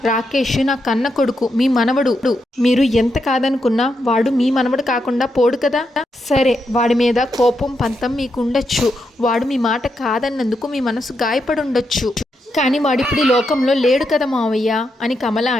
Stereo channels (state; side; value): normal; both; correlation 0.83